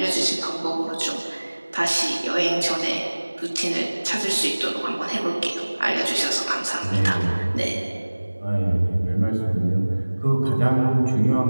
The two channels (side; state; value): both; inverted; correlation -1.00